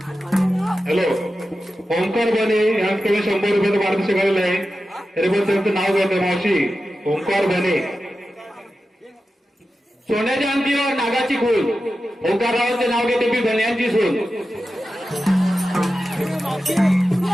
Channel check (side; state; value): both; normal; correlation 0.92